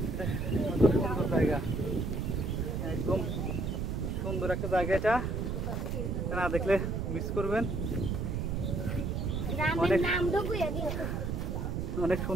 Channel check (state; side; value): noise; right; rumble, 1 dB below the sound